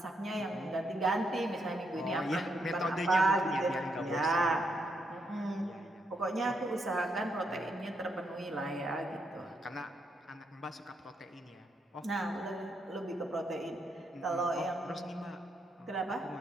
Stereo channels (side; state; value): both; normal; correlation 0.78